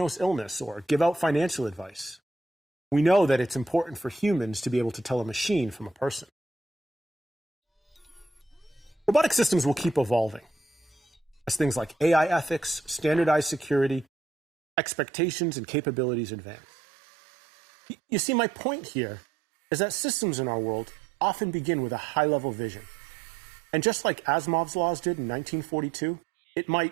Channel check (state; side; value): drops out; left; at 14.1 s